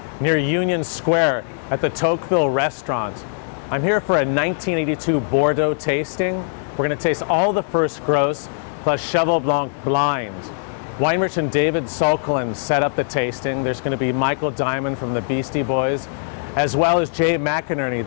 near Union Square, at the Tocqueville restaurant. I'm here for a 1982 Bordeaux tasting. We're going to taste all the first gross, plus Cheval Blanc blind. Wine merchant David Solklin set up the tasting. There's going to be Michael Diamond from the Beastie Boys, as well as Jay McInerney,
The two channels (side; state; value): right; silent; digital silence